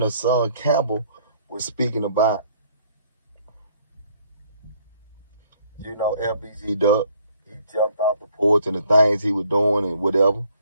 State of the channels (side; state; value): both; inverted; correlation -0.63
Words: Hassan Campbell was speaking about, FBG Duck. He jumped off the porch and the things he was doing and whatever.